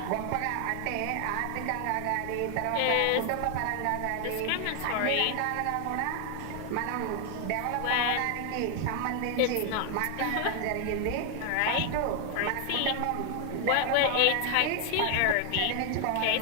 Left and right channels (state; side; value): different; both; correlation 0.00